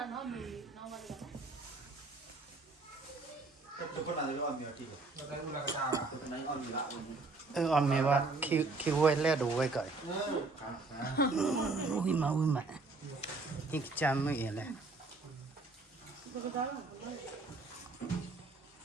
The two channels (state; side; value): quieter; left; 3.6 dB